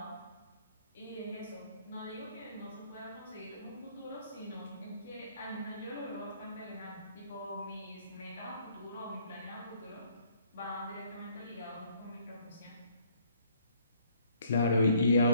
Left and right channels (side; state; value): both; inverted; correlation -0.62